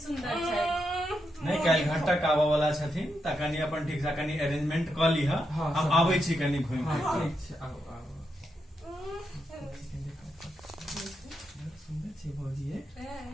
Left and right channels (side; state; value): both; normal; correlation 0.84